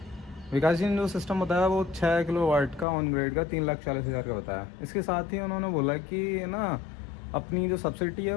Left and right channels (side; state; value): right; drops out; at 2.9 s